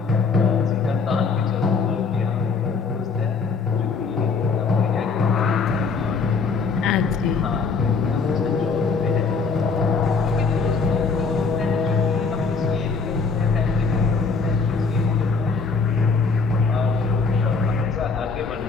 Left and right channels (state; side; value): quieter; right; 4.8 dB